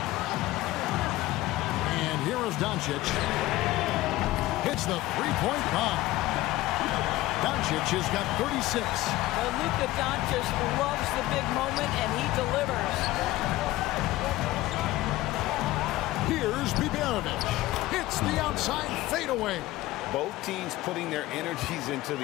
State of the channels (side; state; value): right; quieter; 17.2 dB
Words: And here is Doncic. Hits the three-point bomb. Doncic has got 36. Well, Luka Doncic loves the big moment, and he delivers. Here's Biberovic. Hits the outside fadeaway. Both teams putting their energies into